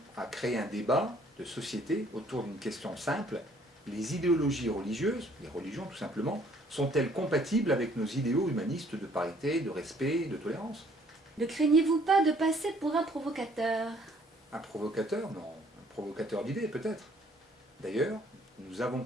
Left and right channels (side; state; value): both; normal; correlation 0.61